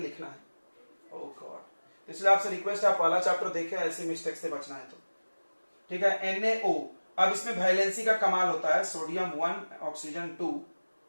है। ओह गॉड, इसलिए आपसे रिक्वेस्ट है आप पहला चैप्टर देखें, ऐसी मिस्टेक से बचना है तो। ठीक है, NaO। अब इसमें वैलेंसी का कमाल होता है, सोडियम 1 ऑक्सीजन 2,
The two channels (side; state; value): both; inverted; correlation -1.00